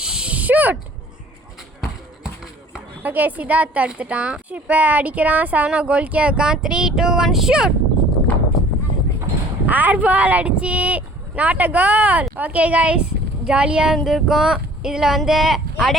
ஷூட். ஓகே, சித்தார்த் எடுத்துட்டான். இப்போ அடிக்கிறான். சரவணா கோல்கியா இருக்கான். 3, 2, 1 ஷூட். ஏர் பால் அடிச்சு not a goal. Okay guys, ஜாலியாக இருந்திருக்கும். இதில்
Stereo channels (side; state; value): both; normal; correlation 0.51